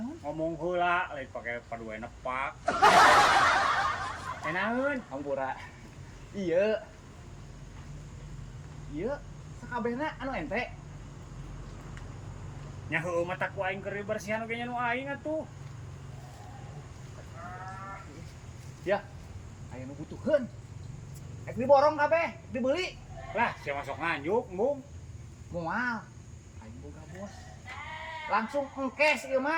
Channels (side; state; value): both; identical; correlation 1.00